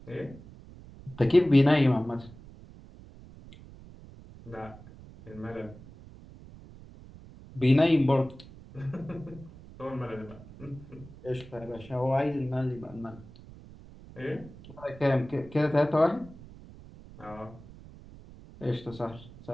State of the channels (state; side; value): noise; right; rumble, 19 dB below the sound